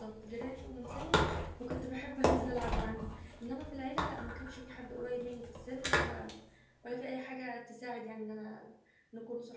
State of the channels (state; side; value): identical; both; correlation 1.00